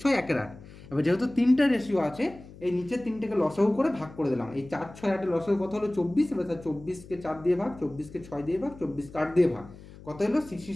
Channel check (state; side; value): noise; left; hum, 19 dB below the sound